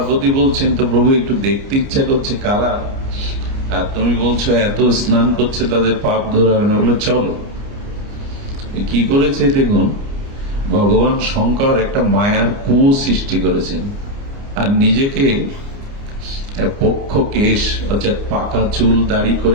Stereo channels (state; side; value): late; left; 29 ms